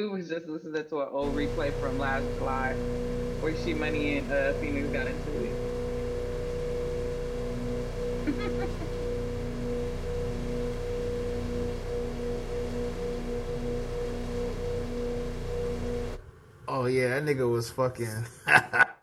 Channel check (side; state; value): both; identical; correlation 1.00